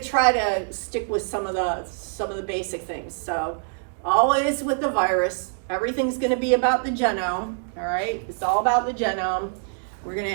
try to stick with some of the basic things. So always with the virus, everything's going to be about the genome. All right, it's all about the genome. We're going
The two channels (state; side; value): silent; left; digital silence